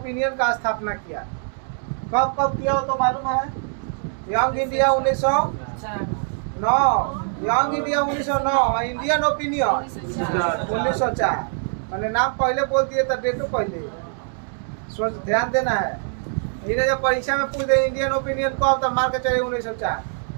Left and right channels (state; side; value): silent; left; 63 dB below the other